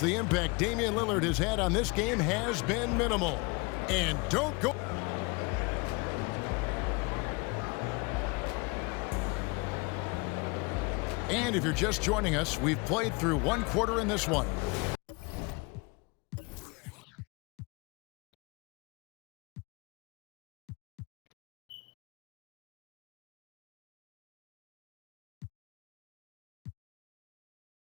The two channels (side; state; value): right; quieter; 28.3 dB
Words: the impact Damian Lillard has had on this game has been minimal. And don't go. And if you're just joining us, we've played through one quarter in this one.